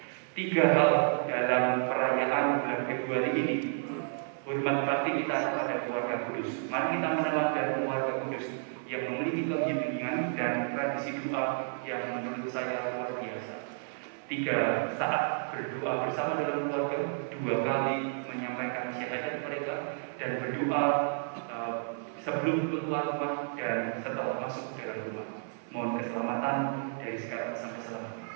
3 hal dalam perayaan bulan Februari ini. Hormat bakti kita kepada keluarga kudus. Mari kita meneladani keluarga kudus yang memiliki keheningan dan tradisi doa yang menurut saya luar biasa. 3 saat berdoa bersama dalam keluarga, 2 kali menyampaikan syahadat mereka dan berdoa sebelum keluar rumah dan setelah masuk dalam rumah. Mohon keselamatan dari sekarang sampai selamanya.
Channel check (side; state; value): left; silent; 56 dB below the other